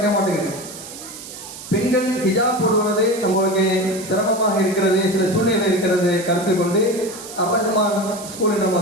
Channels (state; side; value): noise; right; hiss, 13 dB below the sound